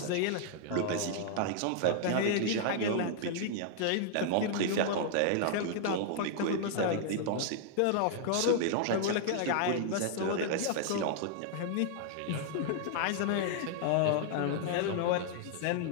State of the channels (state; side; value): different; both; correlation -0.01